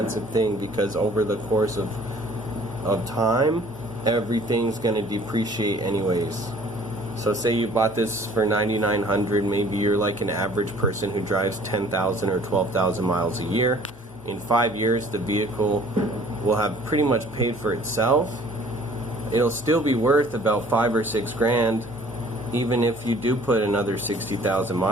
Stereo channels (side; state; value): both; normal; correlation 0.53